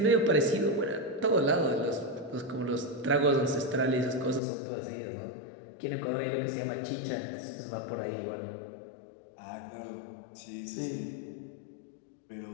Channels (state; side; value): drops out; right; at 4.4 s